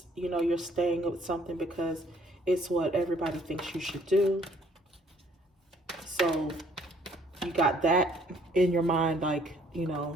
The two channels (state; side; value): normal; both; correlation 0.61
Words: you know, you're staying with something because it's what everybody thinks you should do. So you got that in your mind, like, you